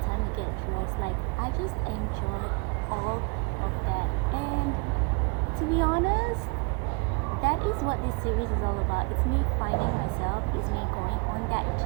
time to get dressed. Like I just enjoy all of that. And to be honest, that is what this series is all about. It's me finding myself, it's me going on that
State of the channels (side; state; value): left; quieter; 29.6 dB